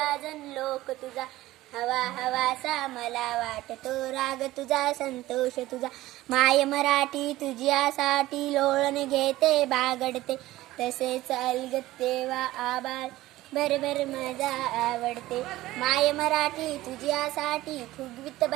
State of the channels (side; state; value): left; quieter; 16.7 dB